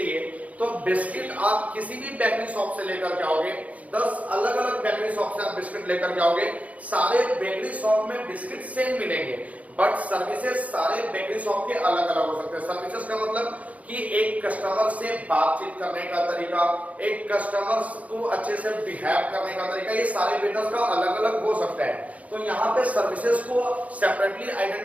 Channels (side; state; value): left; late; 0.069 ms